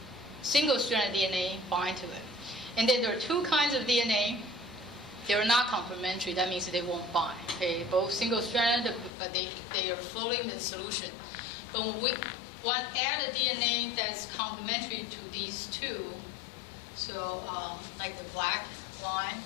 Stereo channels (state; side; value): drops out; right; at 9.1 s